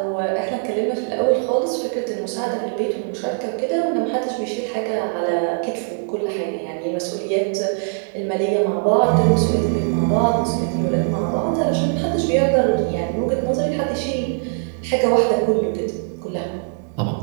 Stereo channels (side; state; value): left; silent; digital silence